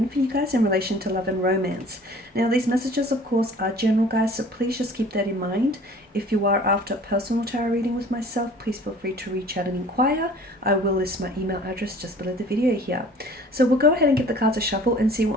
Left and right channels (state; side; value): normal; both; correlation 0.49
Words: for you guys in relation to love and romance. Now, these messages, of course, are general, guys, so please just keep that in mind. If you are after a personal tarot reading with myself, please feel free to reach out and inquire. I will list my email address just below the video here. So we'll go ahead and give the cards a shuffle and see